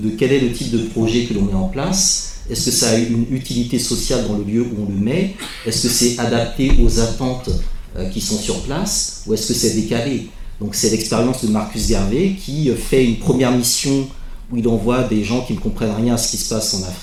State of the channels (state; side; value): identical; both; correlation 1.00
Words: quel est le type de projet que l'on met en place. Est-ce que ça a une utilité sociale dans le lieu où on le met? Est-ce que c'est adapté aux attentes qui sont sur place, ou est-ce que c'est décalé? Donc c'est l'expérience de Marcus Garvey qui fait une première mission où il envoie des gens qui ne comprennent rien à ce qui se passe en